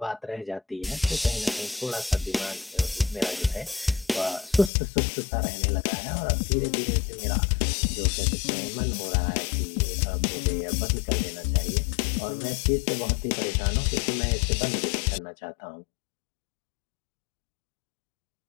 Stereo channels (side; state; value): right; drops out; at 4.7 s